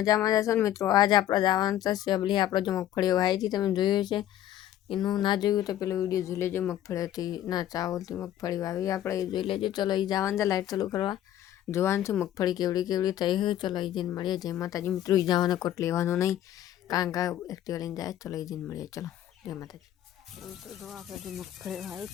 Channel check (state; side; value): quieter; right; 12.0 dB